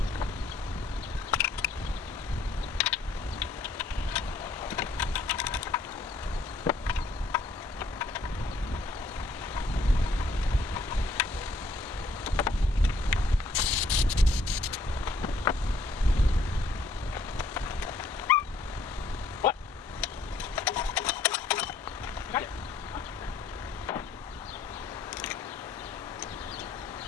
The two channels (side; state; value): right; quieter; 3.1 dB